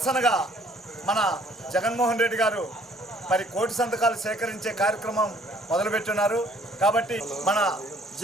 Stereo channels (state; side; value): normal; both; correlation 0.60